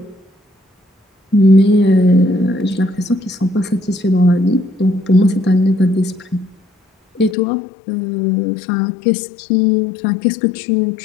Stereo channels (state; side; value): drops out; right; at 7.4 s